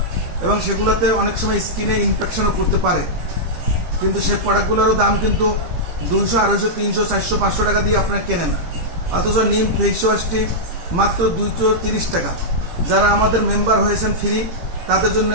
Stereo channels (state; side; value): late; left; 18 ms